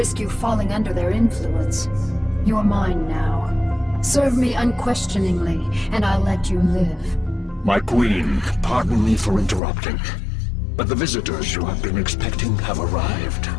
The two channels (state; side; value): drops out; right; at 9.6 s